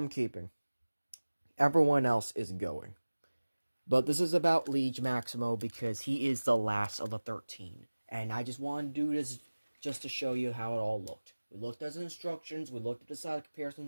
keeping. Everyone else is going. But this is about Liege Maximo because he is the last of the 13. And I just want to do this just to show you how it all looked. We looked at the instructions, we looked at the side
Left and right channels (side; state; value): both; inverted; correlation -1.00